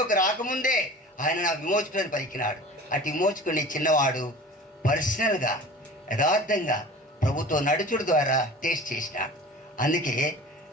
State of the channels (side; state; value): both; normal; correlation 0.40